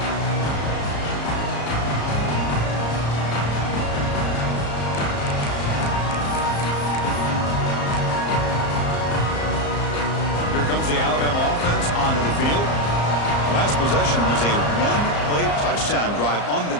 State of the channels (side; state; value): right; late; 34 ms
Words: comes the Alabama offense onto the field. Last possession was a one-play touchdown drive on the